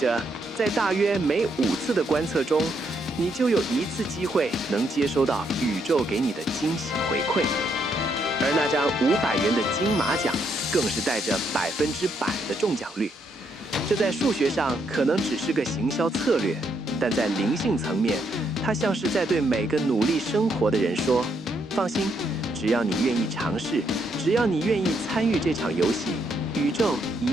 在大约每5次的观测中，你就有1次机会能接收到宇宙给你的惊喜回馈。而那张500元的金马奖更是带着100%的中奖率。这在数学上可能只是个行销策略，但在灵性层面，它像是在对每个努力生活的人说：放心，只要你愿意尝试，只要你愿意参与这场游戏，宇宙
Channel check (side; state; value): both; normal; correlation 0.75